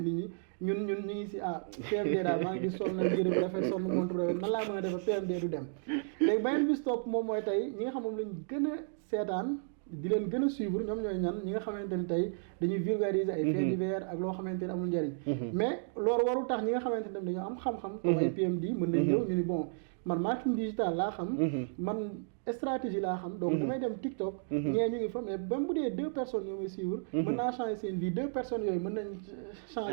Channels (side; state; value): left; silent; digital silence